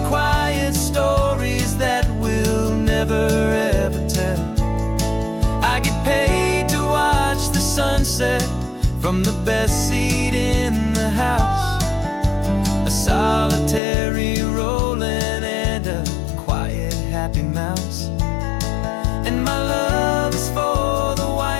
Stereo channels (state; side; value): drops out; right; at 13.8 s